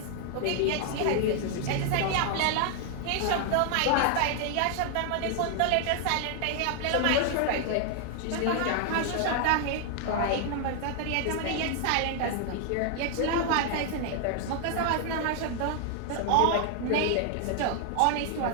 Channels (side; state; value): both; different; correlation 0.00